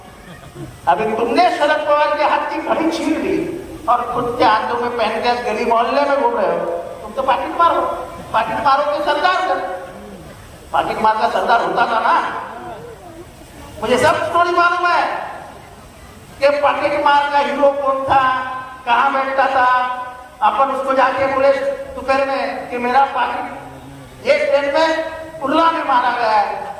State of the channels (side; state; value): both; identical; correlation 1.00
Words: अभी तुमने शरद पवार के हाथ की घड़ी छीन ली और खुद के हाथों में पहन के गली मोहल्ले में घूम रहे हो। तुम तो पाकिट मारो के सरदार कर। पाकिट मार का सरदार होता था ना। मुझे सब स्टोरी मालूम है कि पाकिट मार का हीरो कौन था, कहाँ बैठता था। अपन उसको जाके बोले दोपहर में कि मेरा पाकिट ये ट्रेन में उल्ला में मारा गया है,